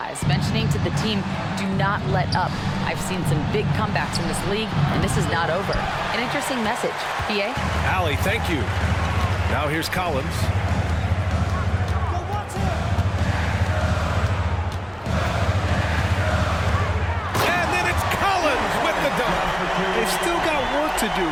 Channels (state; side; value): identical; both; correlation 1.00